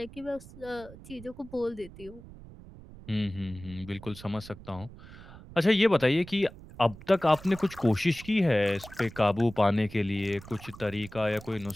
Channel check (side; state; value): right; noise; rumble, 18 dB below the sound